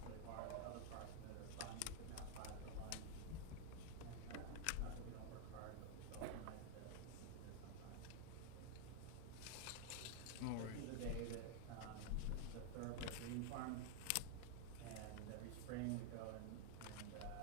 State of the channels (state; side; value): different; both; correlation 0.00